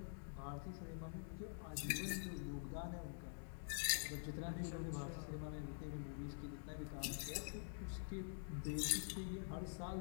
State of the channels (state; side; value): silent; right; digital silence